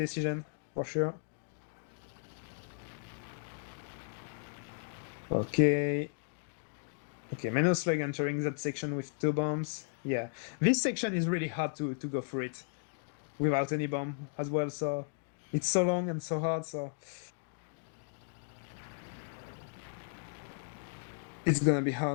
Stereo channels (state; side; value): silent; right; digital silence